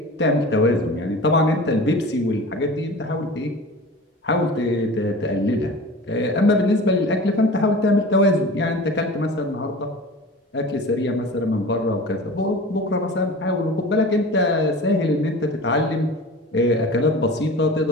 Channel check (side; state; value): both; normal; correlation 0.37